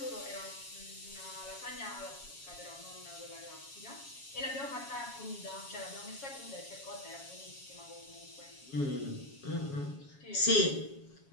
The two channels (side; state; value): right; late; 7.2 ms